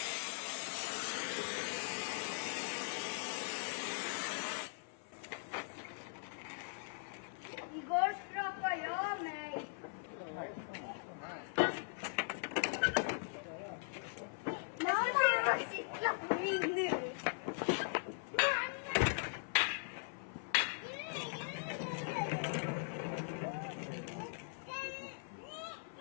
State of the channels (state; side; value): silent; right; 51 dB below the other